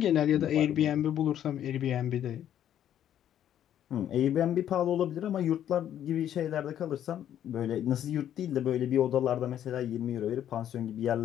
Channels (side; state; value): right; quieter; 10.6 dB